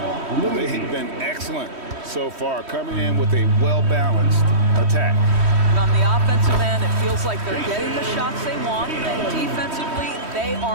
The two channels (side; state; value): left; late; 3.1 ms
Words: been excellent so far, coming in with a well-balanced attack. And on the offensive end, it feels like they're getting the shots they want, and defensively, they